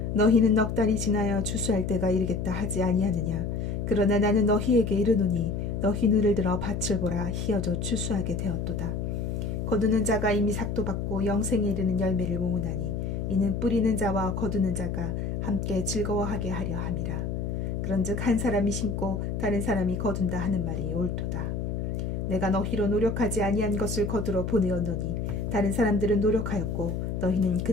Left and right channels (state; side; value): noise; left; hum, 2 dB below the sound